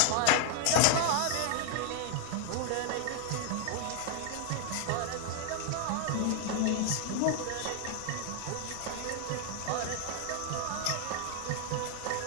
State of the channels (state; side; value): different; both; correlation 0.00